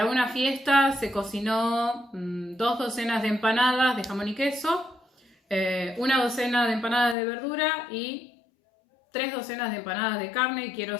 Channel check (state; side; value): drops out; right; at 7.2 s